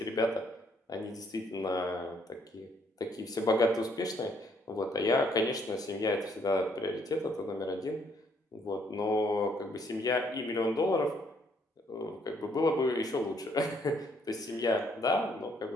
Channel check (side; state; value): both; normal; correlation 0.68